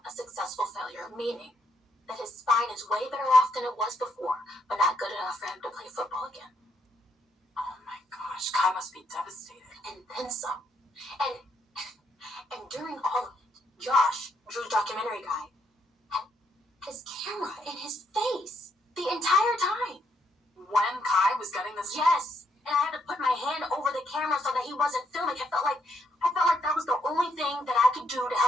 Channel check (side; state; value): both; normal; correlation 0.75